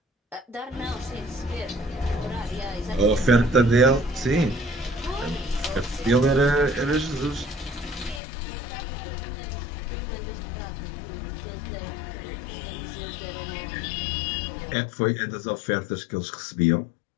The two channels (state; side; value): drops out; right; at 8.2 s